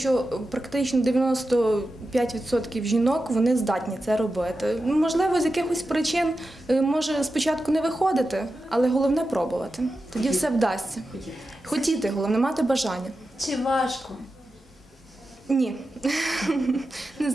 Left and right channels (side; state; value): both; normal; correlation 0.91